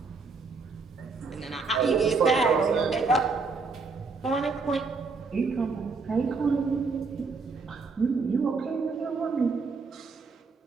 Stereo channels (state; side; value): quieter; left; 4.4 dB